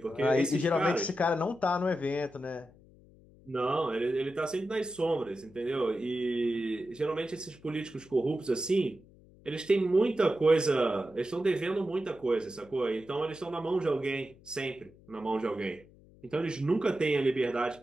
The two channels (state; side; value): noise; left; hum, 25 dB below the sound